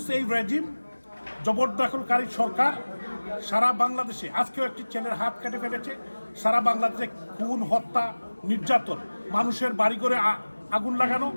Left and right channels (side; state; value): both; inverted; correlation -1.00